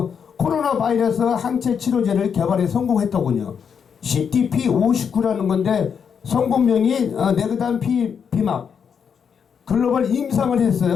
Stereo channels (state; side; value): quieter; right; 7.0 dB